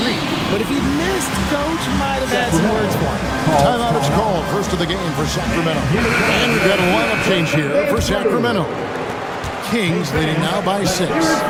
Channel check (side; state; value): both; identical; correlation 1.00